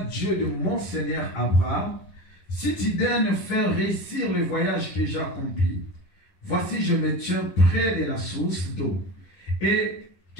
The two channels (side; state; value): right; late; 11 ms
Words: Dieu de mon Seigneur Abraham, si tu daignes faire réussir le voyage que j'ai accompli, voici je me tiens près de la source d'eau, et